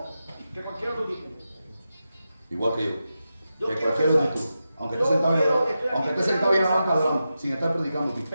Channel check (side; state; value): both; inverted; correlation -0.90